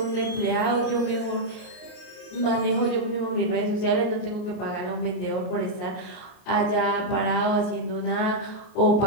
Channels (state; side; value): late; right; 38 ms